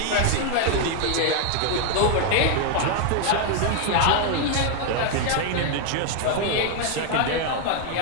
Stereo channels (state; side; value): different; both; correlation 0.00